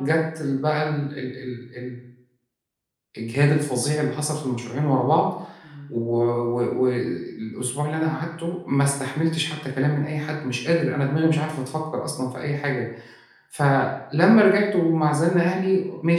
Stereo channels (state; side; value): identical; both; correlation 1.00